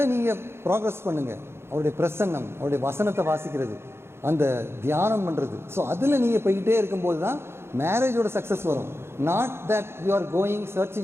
நீங்கள் ப்ராக்ரஸ் பண்ணுங்கள். அவருடைய பிரசன்னம், அவருடைய வசனத்தை வாசிக்கிறது, அந்த தியானம் பண்ணுறது. ஸோ அதில் நீங்கள் போய்கிட்டே இருக்கும்போது தான் மேரேஜோட சக்ஸஸ் வரும். Not that you are going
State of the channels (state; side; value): late; left; 0.12 ms